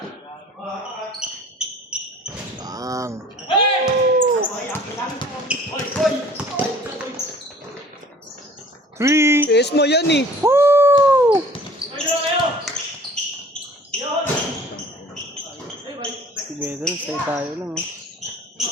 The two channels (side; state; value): both; normal; correlation 0.49